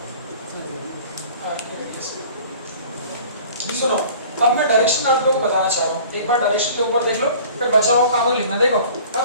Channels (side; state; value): both; inverted; correlation -0.47